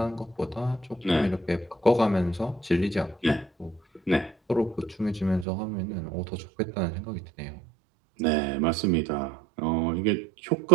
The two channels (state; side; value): drops out; left; at 5.5 s